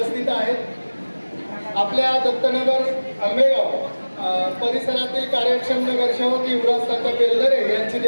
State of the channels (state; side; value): inverted; both; correlation -1.00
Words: आहेत। आपल्या दत्तनगर आंबेगाव परिसरातील कार्यक्षम नगरसेवक युवराज तात्या बेलदरे यांची